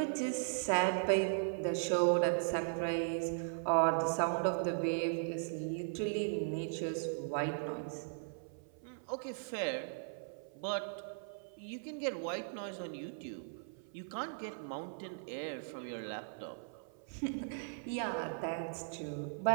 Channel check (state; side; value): silent; left; 52 dB below the other